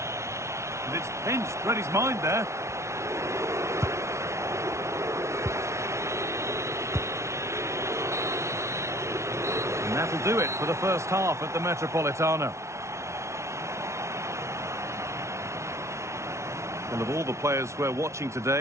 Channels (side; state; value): left; late; 0.13 ms